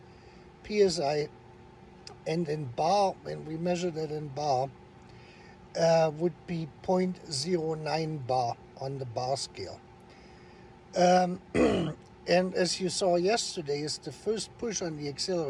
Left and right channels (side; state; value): both; identical; correlation 1.00